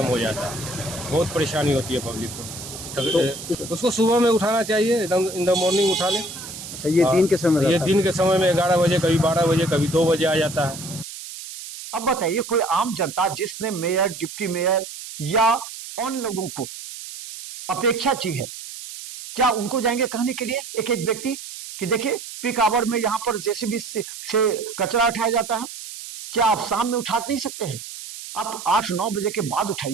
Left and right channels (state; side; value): noise; right; hiss, 11 dB below the sound